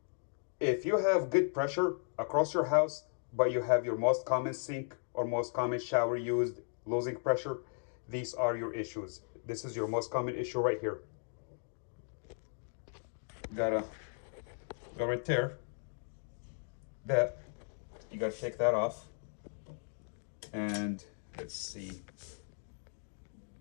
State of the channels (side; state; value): right; silent; 54 dB below the other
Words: if you have good pressure across your house, but you have your most common sink or most common shower used losing pressure, these are your issues. This is your most common issue right here. Gotta go right there. That you gotta take that off, and let's see.